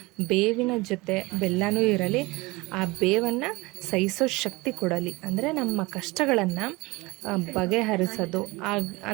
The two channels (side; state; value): left; quieter; 23.0 dB